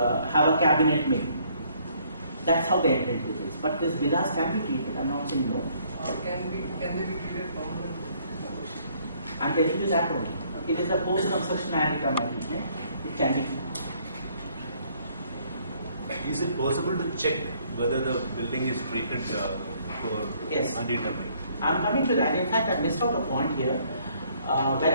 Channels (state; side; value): inverted; both; correlation -0.64